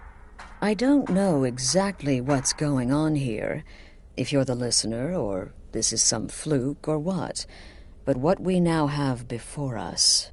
I don't know exactly what's going on here, if you're the listener, or this is some fluke, or what. But what we now have before us...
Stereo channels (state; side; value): identical; both; correlation 1.00